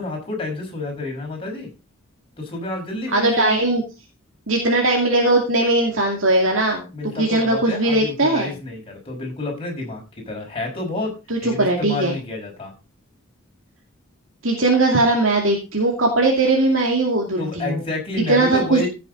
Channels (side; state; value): both; normal; correlation -0.03